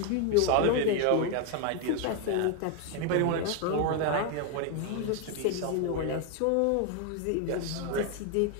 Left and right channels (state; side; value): different; both; correlation 0.01